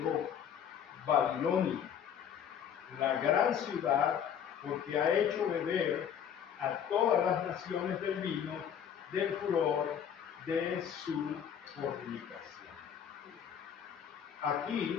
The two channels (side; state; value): right; quieter; 8.5 dB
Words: Babilonia, la gran ciudad, porque ha hecho beber a todas las naciones del vino del furor de su fornicación.